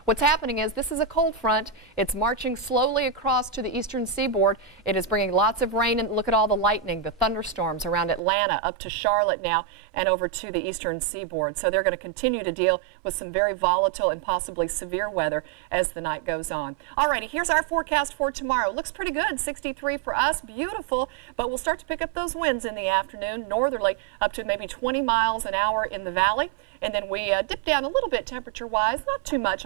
What's happening is this is a cold front. It's marching slowly across to the eastern seaboard. It is bringing lots of rain, and look at all the lightning, the thunderstorms around Atlanta up to Charlotte now and over to the eastern seaboard. So they're going to continue to deal with some very volatile and possibly severe weather as the night goes on. Alrighty, here's our forecast for tomorrow. Looks pretty good. 63 for us, beautiful, but we'll start to pick up those winds in the afternoon, northerly up to maybe 20 miles an hour in the valley, and then we dip down a little bit temperature-wise, not too much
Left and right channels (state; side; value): drops out; left; at 8.2 s